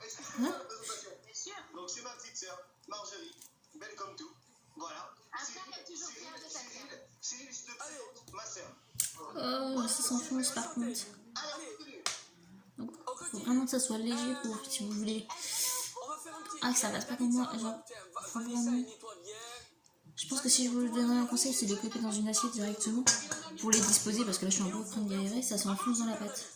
Hein? donc c'est ma petite soeur, Marjorie, belle comme tout. Voilà. Cyril, je te présente ma soeur. Oh, ça s'enfonce par contre. Donc, faut vraiment que ça soit léger pour si vous voulez. Ah, que ça passe pas comme moi. Genre, faut vraiment. Je pense que si je vous donnerais un conseil, c'est de couper dans une assiette directement pour les disposer parce que là je suis un peu en train de galérer, ça s'enfonce dans la pâte.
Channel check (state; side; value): identical; both; correlation 1.00